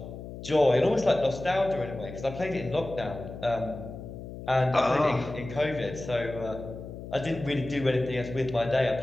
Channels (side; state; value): left; noise; hum, 11 dB below the sound